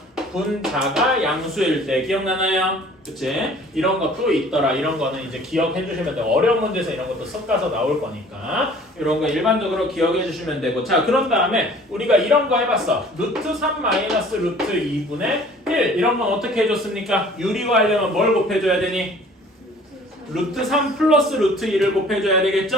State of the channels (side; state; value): both; normal; correlation 0.51